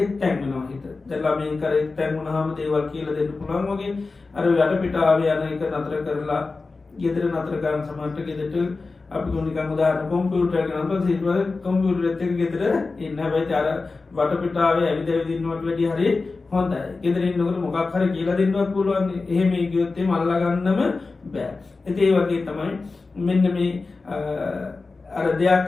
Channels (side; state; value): right; quieter; 3.9 dB